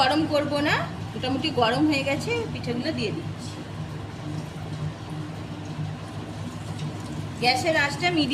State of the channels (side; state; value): both; identical; correlation 1.00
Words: করব না, মোটামুটি গরম হয়ে গেছে। পিঠাগুলো দিয়ে দিচ্ছি। গ্যাসের আঁচটা